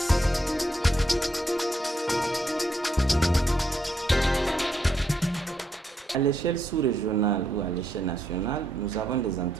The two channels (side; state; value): both; normal; correlation 0.77